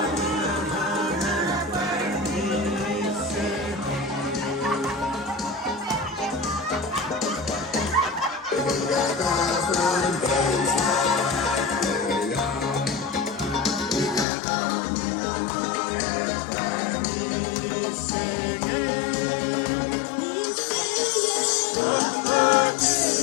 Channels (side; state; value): right; drops out; at 14.2 s